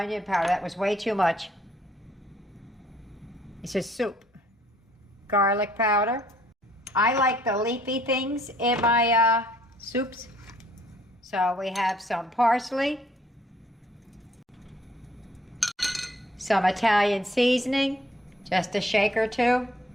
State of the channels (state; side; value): normal; both; correlation 0.62